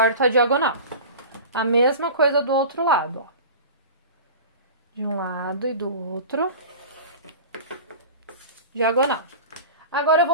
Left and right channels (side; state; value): both; inverted; correlation -0.34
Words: a diagonal. A mesma coisa do outro lado, ó. De um lado e do outro, diagonal. Agora, eu